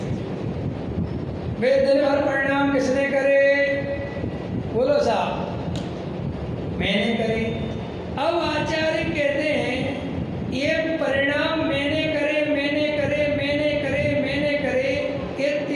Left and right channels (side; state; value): both; identical; correlation 1.00